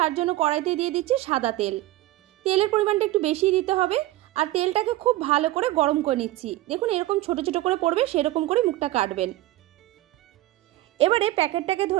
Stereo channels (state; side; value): quieter; left; 16.5 dB